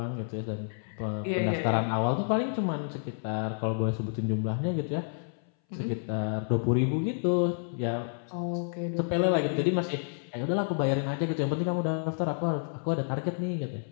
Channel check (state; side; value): silent; right; 58 dB below the other